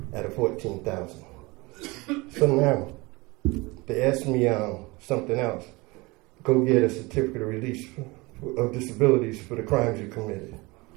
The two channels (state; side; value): quieter; left; 24.1 dB